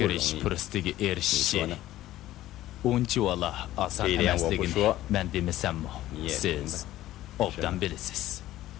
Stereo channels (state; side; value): quieter; right; 14.8 dB